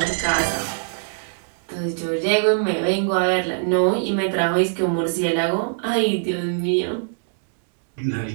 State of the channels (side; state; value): left; silent; digital silence